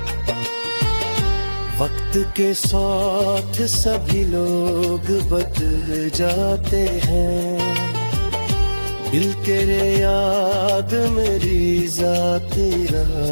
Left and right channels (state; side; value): inverted; both; correlation -1.00